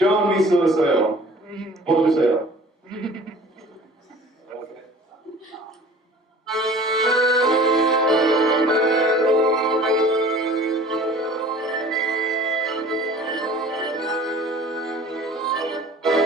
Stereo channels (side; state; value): both; normal; correlation 0.46